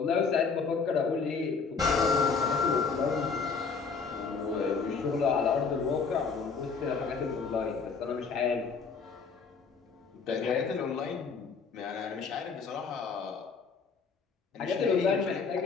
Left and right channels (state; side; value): quieter; right; 5.2 dB